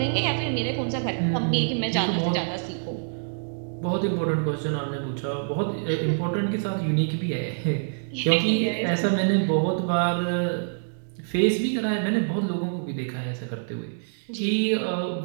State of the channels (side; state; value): left; silent; digital silence